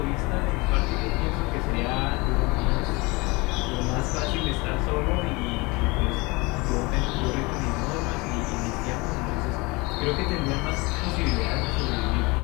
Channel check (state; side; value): quieter; right; 25.1 dB